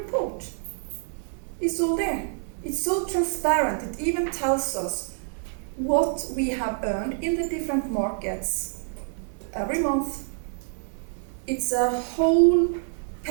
It's all there. It's so transparent. It even tells us what we have earned in the different markets every month. It's a whole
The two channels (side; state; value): left; silent; 60 dB below the other